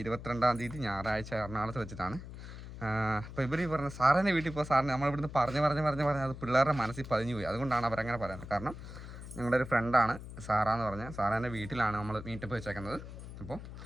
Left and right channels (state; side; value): noise; left; hum, 12 dB below the sound